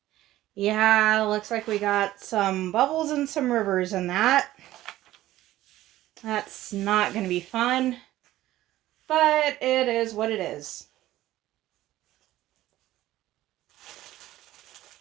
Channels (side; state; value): left; quieter; 15.0 dB